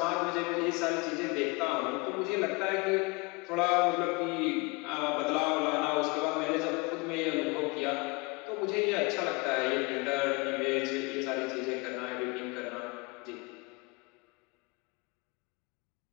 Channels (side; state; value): right; quieter; 27.3 dB